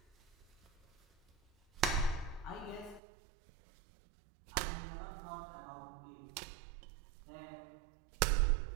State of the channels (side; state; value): left; drops out; at 3.0 s